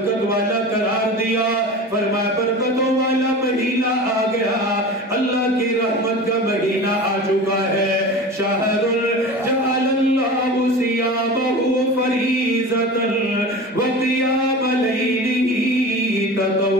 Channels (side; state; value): both; normal; correlation 0.33